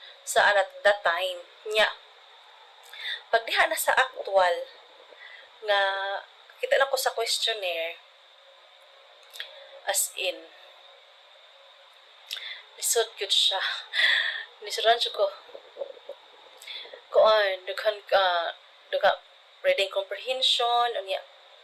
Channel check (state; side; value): identical; both; correlation 1.00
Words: sa at that time. Nya, pag diha na sa actual, nga kita na ko sa questionnaire, as in, lisod yun siya. Lisudan siya ko. Dughan reading comprehension,